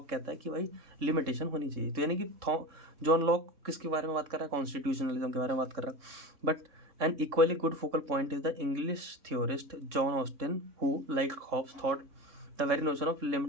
कहता है कि भाई लिमिटेशन होनी चाहिए। तो यानी कि जॉन लॉक किसके बारे में बात कर रहा है, कॉन्स्टिट्यूशनलिज्म के बारे में बात कर रहा है। But an equally good focal point is the English theorist John Austin who like Hobbes thought the very notion of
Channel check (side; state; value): left; late; 3.7 ms